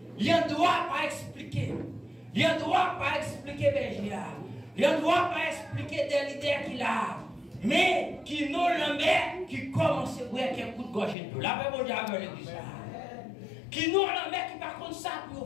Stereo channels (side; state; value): right; drops out; at 11.2 s